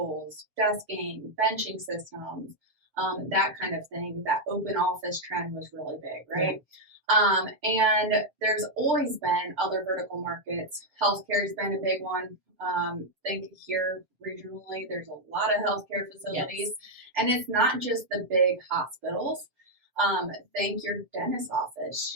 desking, benching systems, that kind of thing. That open office trend was really big, right? And there's always been other vertical markets. Healthcare's been a big one. Think here regionally, there's a lot of healthcare facilities, and it's not just the big hospitals. Think your dentist office,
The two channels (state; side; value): late; left; 7.1 ms